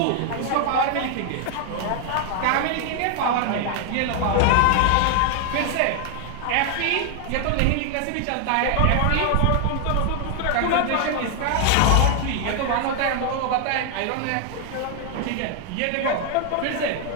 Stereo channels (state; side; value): different; both; correlation 0.00